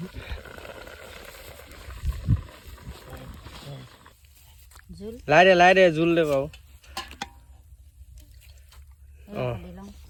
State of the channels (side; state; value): both; identical; correlation 1.00